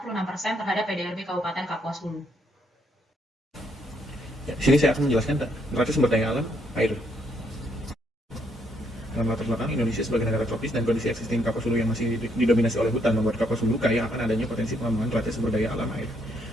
terhadap PDRB Kabupaten Kapuas Hulu. Ya, di sini saya akan menjelaskan neraca sumber daya alam air. Dalam latar belakang Indonesia sebagai negara tropis dan kondisi existing Kapuas Hulu yang masih didominasi oleh hutan membuat Kapuas Hulu kaya akan adanya potensi pengembangan neraca sumber daya alam air.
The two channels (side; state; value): both; normal; correlation 0.72